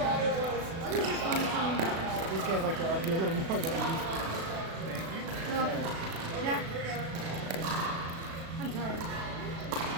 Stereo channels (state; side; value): late; left; 36 ms